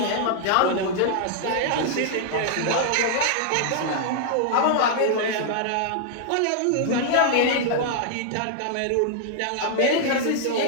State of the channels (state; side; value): different; both; correlation -0.01